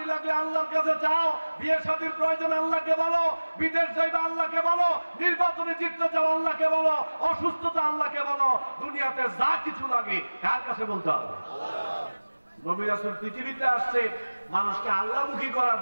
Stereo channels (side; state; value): both; inverted; correlation -1.00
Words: লাগলে আল্লাহর কাছে চাও, বিয়ে শাদীর প্রয়োজন আল্লাহকে বলো, বিদেশ যাইবা আল্লাহকে বলো, নির্বাচনে জিততে চাও আল্লাহকে বলো, অসুস্থতা আল্লাহকে বলো। দুনিয়াতে যা কিছু লাগে কার কাছে বলতে হবে? নবী রাসূল পৃথিবীতে আসছে মানুষকে আল্লাহমুখী করার